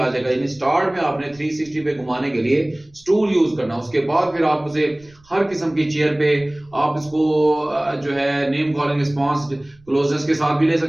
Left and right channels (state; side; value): noise; right; rumble, 29 dB below the sound